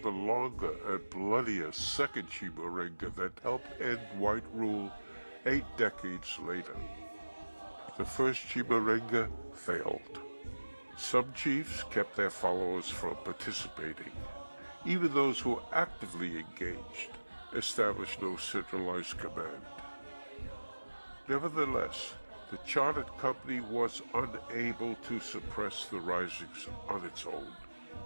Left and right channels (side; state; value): both; inverted; correlation -1.00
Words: the longer and bloodier Second Chimurenga that helped end white rule 8 decades later. The First Chimurenga failed. Some chiefs kept their followers from participating. Even those who actively engaged established no centralized command. Nevertheless, the chartered company was unable to suppress the risings on its own.